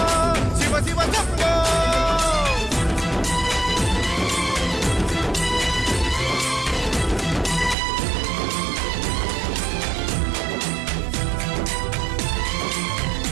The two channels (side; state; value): left; drops out; at 7.8 s